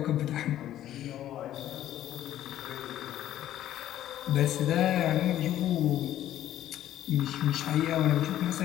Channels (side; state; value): right; quieter; 12.5 dB